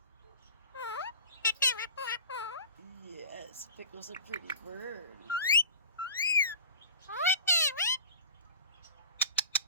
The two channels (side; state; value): both; inverted; correlation -0.36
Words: Yes, Pickle's a pretty bird.